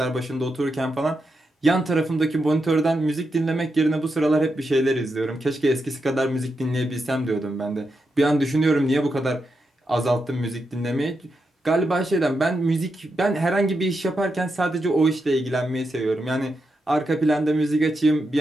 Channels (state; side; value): normal; both; correlation 0.86